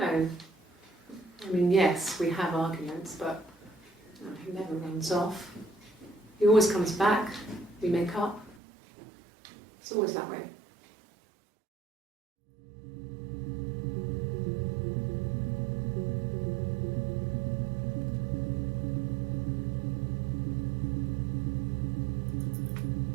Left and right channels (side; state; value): left; drops out; at 8.6 s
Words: I mean, yes, we have arguments, but he never runs off. He always comes back. We make up. It's always that way.